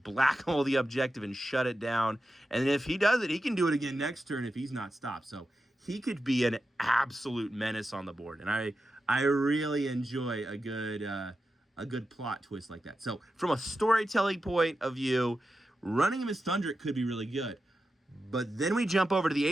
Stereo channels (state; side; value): normal; both; correlation 0.90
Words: hole the objective and shut it down. And if he does it, he can do it again next turn if he's not stopped. So he could be an absolute menace on the board. And I I really enjoy a good plot twist like that. So from a storytelling point of view, running him as Thundrick could be really good. But then we jump over to the